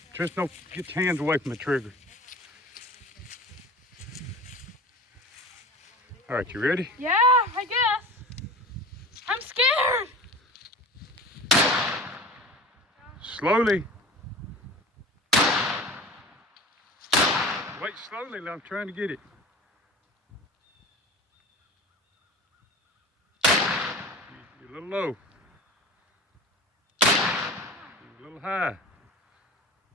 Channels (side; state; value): both; normal; correlation 0.36